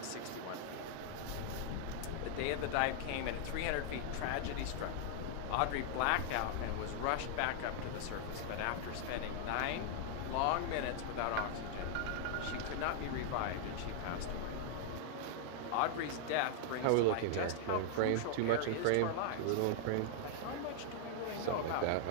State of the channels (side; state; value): both; different; correlation 0.00